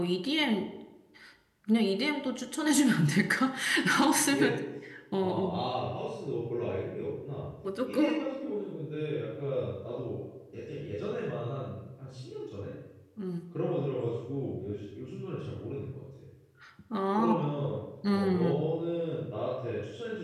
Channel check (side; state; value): both; identical; correlation 1.00